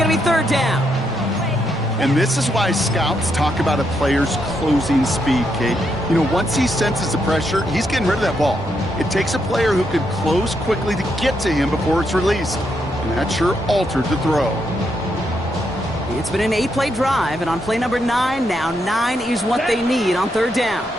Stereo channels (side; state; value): both; normal; correlation 0.79